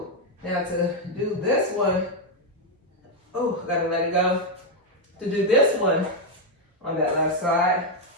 Now to do this one, oh, gotta let it go. To do this one on that left side,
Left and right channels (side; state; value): both; normal; correlation 0.02